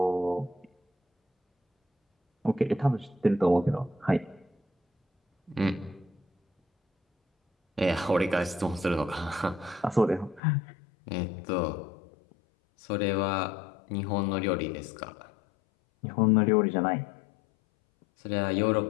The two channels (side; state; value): right; drops out; at 10.4 s